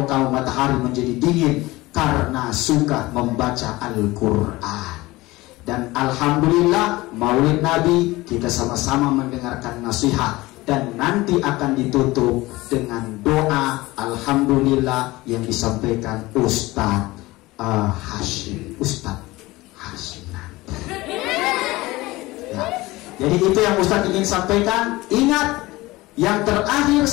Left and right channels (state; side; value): quieter; right; 20.0 dB